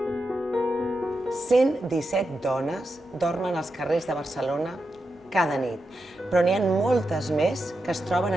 dones dormen als carrers de Barcelona cada nit, però n'hi ha moltes més que es troben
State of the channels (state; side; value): normal; both; correlation 0.88